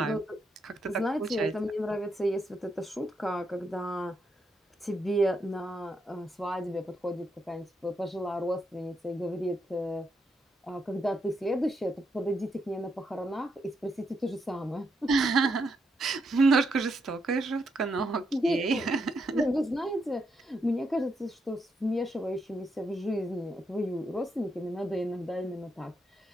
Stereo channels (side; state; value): both; normal; correlation 0.80